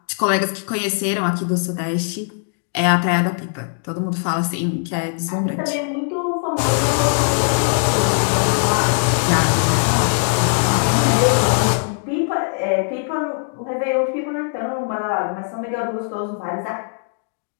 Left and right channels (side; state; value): right; silent; digital silence